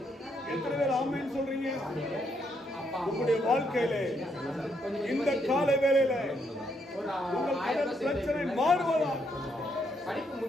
எத்தனை பேர் ஆமென் சொல்றீங்க? உங்களுடைய வாழ்க்கையில இந்த கால வேளையில உங்கள் பிரச்சனை மாறுவதா? படிப்பு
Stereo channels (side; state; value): both; normal; correlation 0.75